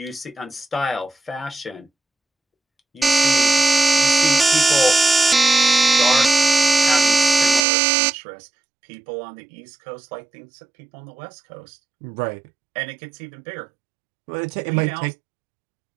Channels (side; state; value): left; drops out; at 7.7 s